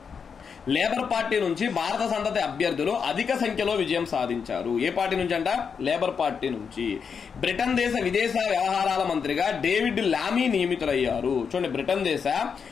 లేబర్ పార్టీ నుంచి భారత సంతతి అభ్యర్థులు అధిక సంఖ్యలో విజయం సాధించారు. ఏ పార్టీ నుంచి అంట? లేబర్ పార్టీ నుంచి. బ్రిటన్ దేశ విదేశీ వ్యవహారాల మంత్రిగా డేవిడ్ లామీ నియమితులయ్యారు. చూడండి, బ్రిటన్ దేశ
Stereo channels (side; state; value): right; quieter; 6.3 dB